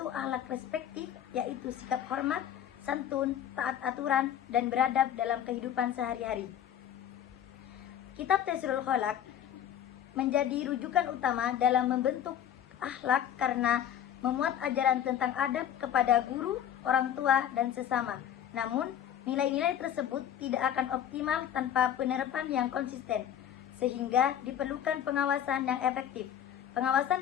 akhlak respektif, yaitu sikap hormat, santun, taat aturan, dan beradab dalam kehidupan sehari-hari. Kitab Taisirul Kholaq menjadi rujukan utama dalam membentuk akhlak karena memuat ajaran tentang adab kepada guru, orang tua, dan sesama. Namun, nilai-nilai tersebut tidak akan optimal tanpa penerapan yang konsisten, sehingga diperlukan pengawasan yang efektif. Pengawasan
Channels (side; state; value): right; quieter; 9.9 dB